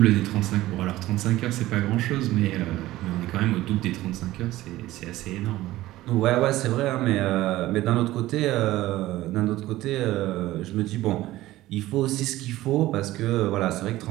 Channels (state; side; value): quieter; left; 16.4 dB